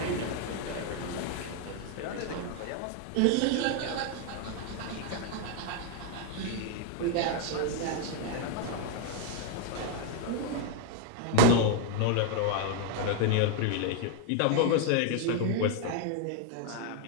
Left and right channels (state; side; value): different; both; correlation 0.01